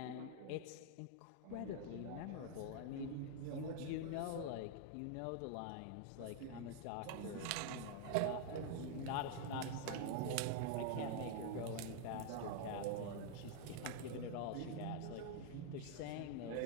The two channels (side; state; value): both; different; correlation 0.00